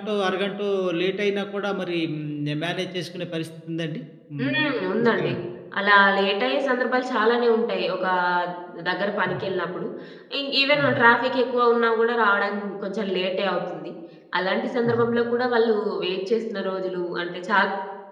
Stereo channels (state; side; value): identical; both; correlation 1.00